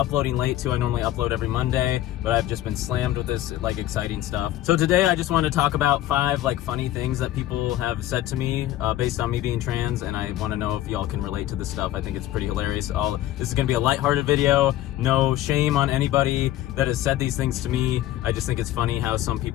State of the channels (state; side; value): quieter; right; 13.9 dB